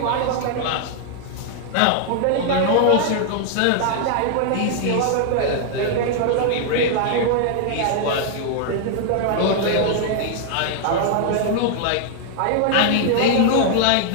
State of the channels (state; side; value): different; both; correlation -0.01